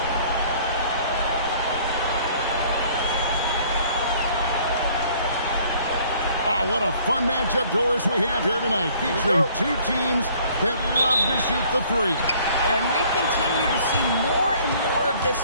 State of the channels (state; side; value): inverted; both; correlation -0.57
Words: What a fun matchup, Doris, we have here tonight, featuring two teams that love to shoot the three. And we continue to see more and more of this